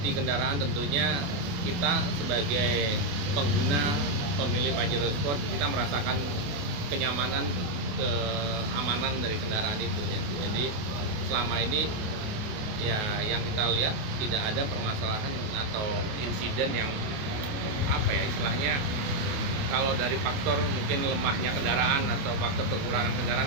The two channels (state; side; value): late; left; 28 ms